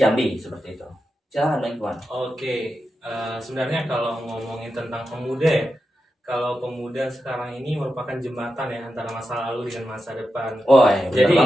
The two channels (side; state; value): both; normal; correlation 0.89